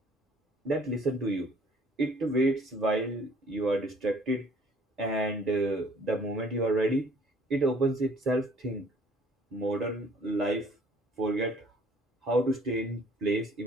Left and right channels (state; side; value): normal; both; correlation 0.57